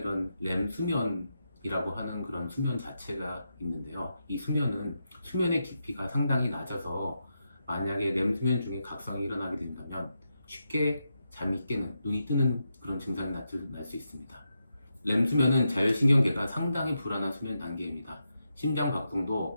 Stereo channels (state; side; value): inverted; both; correlation -0.86